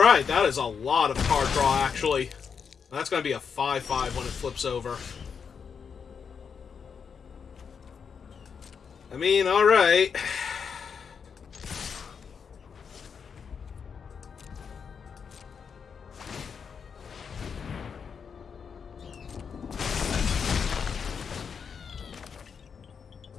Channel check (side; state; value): right; quieter; 6.4 dB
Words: that is a lot of card draw, actually. That's going to be a 5/5 when it flips over. I mean, alright.